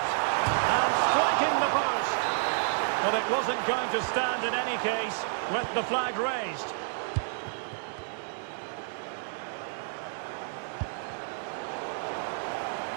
And striking the post. But it wasn't going to stand in any case with the flag raised.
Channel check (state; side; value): silent; left; digital silence